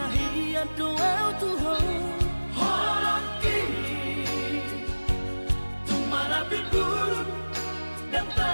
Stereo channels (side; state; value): both; inverted; correlation -1.00